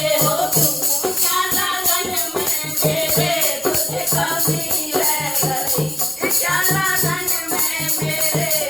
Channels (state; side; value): noise; right; rumble, 27 dB below the sound